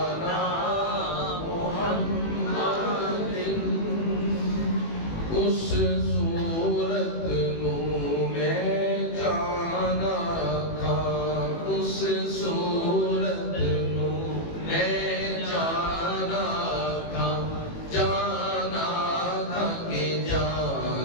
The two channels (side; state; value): right; late; 18 ms